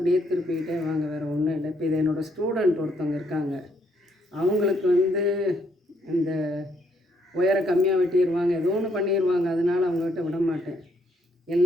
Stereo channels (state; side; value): normal; both; correlation 0.72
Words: திருப்பிக்கிட்டே வாங்க, வேறு ஒன்றும் இல்லை. இப்போ இது என்னோடய ஸ்டூடெண்ட் ஒருத்தவங்க இருக்காங்க. அவங்களுக்கு இந்த ஒயரை கம்மியாக வெட்டிடுவாங்க, ஏதோ ஒன்று பண்ணிடுவாங்க. அதனால் அவங்ககிட்ட விட மாட்டேன்.